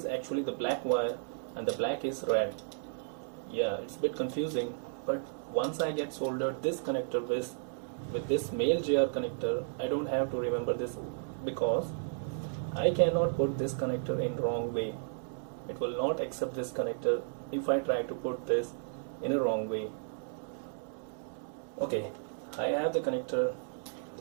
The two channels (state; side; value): silent; left; digital silence